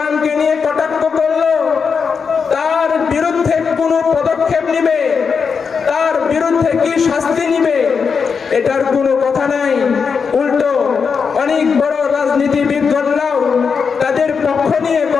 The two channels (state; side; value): quieter; right; 5.8 dB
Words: নিয়ে কটাক্ষ করলো তার বিরুদ্ধে কোন পদক্ষেপ নিবে, তার বিরুদ্ধে কি শাস্তি নিবে এটার কোনো কথা নাই। উল্টো অনেক বড় রাজনীতিবিদগণরাও তাদের পক্ষ নিয়ে